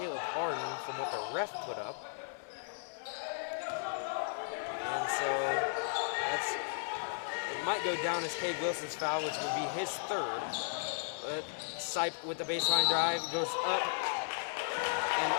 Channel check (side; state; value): right; silent; digital silence